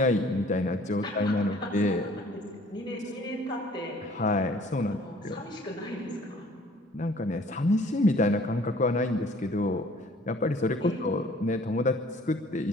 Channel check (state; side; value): normal; both; correlation 0.55